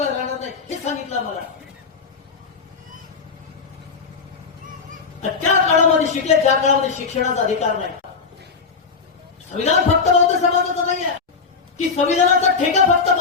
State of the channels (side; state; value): right; quieter; 5.0 dB